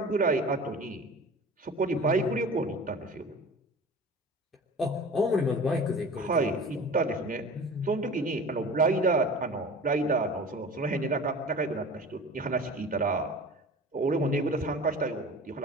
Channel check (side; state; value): both; normal; correlation 0.39